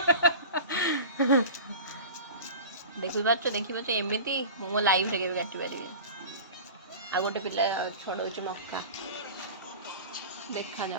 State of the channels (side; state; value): both; inverted; correlation -0.35